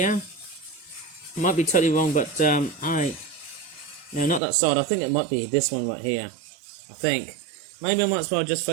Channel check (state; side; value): drops out; left; at 4.4 s